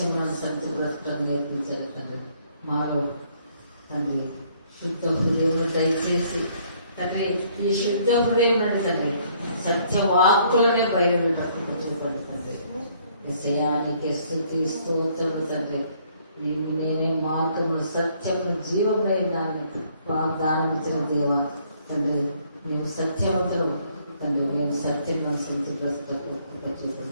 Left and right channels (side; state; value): both; inverted; correlation -0.65